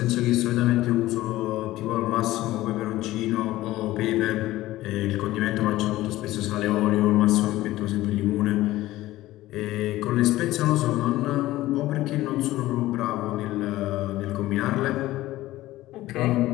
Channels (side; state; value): right; quieter; 16.4 dB